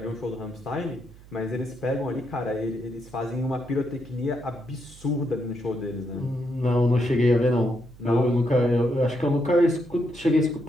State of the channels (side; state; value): right; noise; hum, 21 dB below the sound